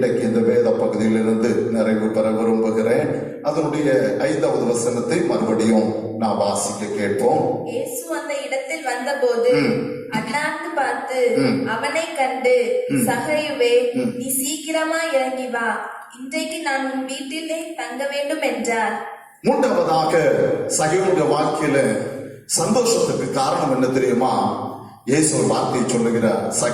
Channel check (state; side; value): identical; both; correlation 1.00